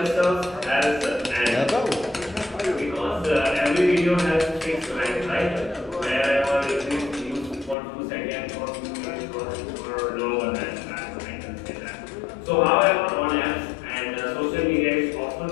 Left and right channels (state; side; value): drops out; right; at 7.8 s